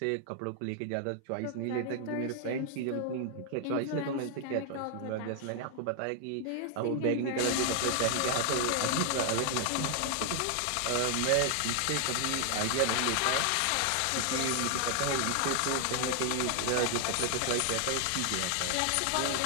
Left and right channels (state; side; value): different; both; correlation 0.00